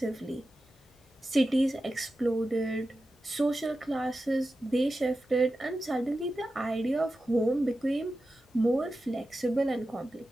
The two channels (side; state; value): both; normal; correlation 0.92